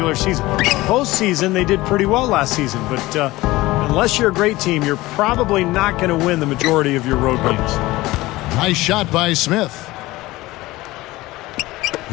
season. Postseason, they did pretty well last season. But unless you're a great team, you're probably not going to win the majority of your road games. Nice shot by Smith.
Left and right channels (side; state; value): right; quieter; 18.9 dB